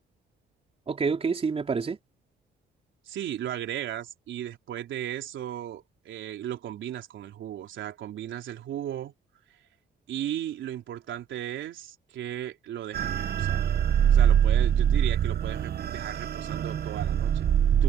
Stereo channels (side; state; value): left; quieter; 8.7 dB